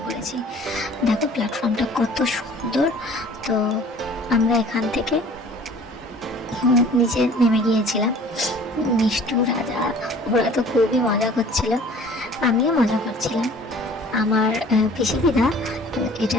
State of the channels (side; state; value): both; normal; correlation 0.49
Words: করেছি। দেখো প্ল্যাটফর্মটা কত সুন্দর। তো আমরা এখান থেকে নিচে নেমে গিয়েছিলাম। মিষ্টু, রাজা ওরা তো খুবই মজা করছিল, আমিও মজা করছিলাম। আমার পিসি দিদা